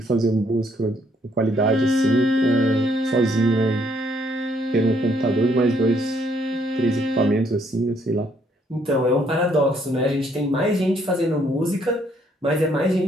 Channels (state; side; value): normal; both; correlation 0.68